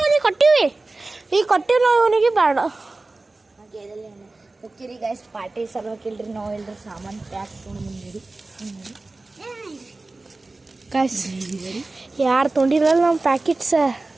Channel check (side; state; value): left; quieter; 3.2 dB